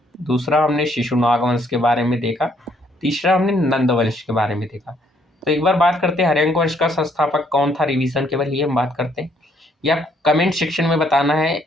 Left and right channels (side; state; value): both; normal; correlation 0.68